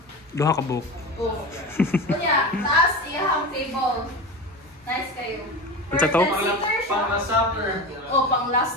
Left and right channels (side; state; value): both; normal; correlation 0.26